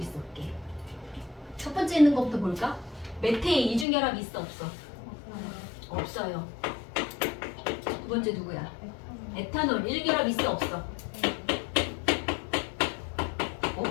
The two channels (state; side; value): drops out; right; at 3.9 s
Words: 첫 번째 있는 것부터 볼까? 메테인 이중결합 있어 없어? 없어요. 두 번째 누구야? 에탄올 1결합 있어 없어?